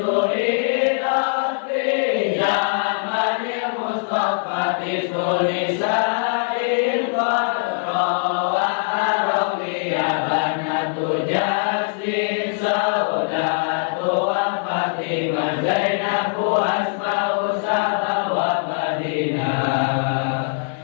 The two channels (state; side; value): silent; right; digital silence